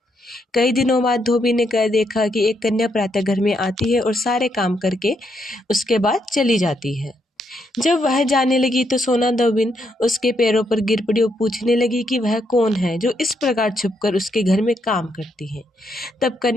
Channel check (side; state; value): both; normal; correlation 0.77